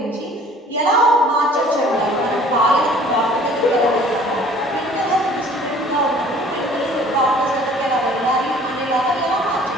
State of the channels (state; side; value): normal; both; correlation 0.52